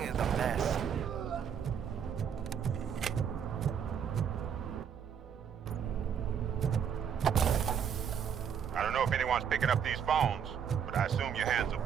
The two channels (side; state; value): left; quieter; 7.9 dB